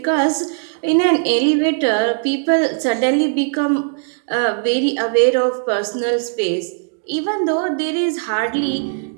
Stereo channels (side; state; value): left; silent; digital silence